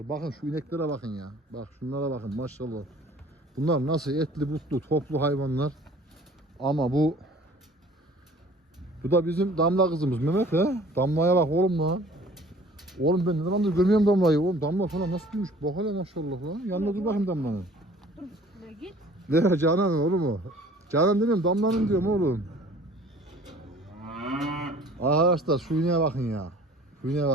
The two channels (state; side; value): normal; both; correlation 0.50